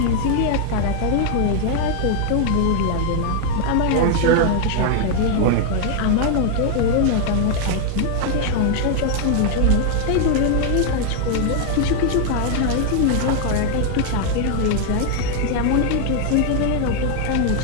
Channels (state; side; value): different; both; correlation 0.00